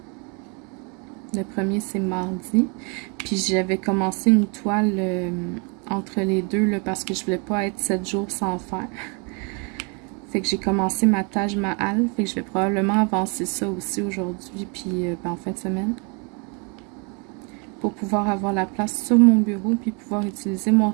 Le 1er, c'est mardi. Puis j'avais commencé une toile entre les deux là, parce que je voulais pas être 7 jours sans faire. Fait que j'ai commencé ma Taj Mahal. Fait que je vais probablement avancer ça aussi aujourd'hui, puis en fin de semaine. Pour pouvoir avoir la place sur mon bureau, puis pouvoir utiliser mon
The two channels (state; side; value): quieter; left; 34.4 dB